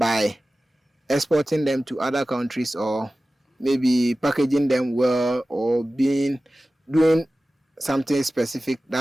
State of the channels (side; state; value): both; normal; correlation 0.96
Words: exporting them to other countries, or maybe packaging them well, or doing something specific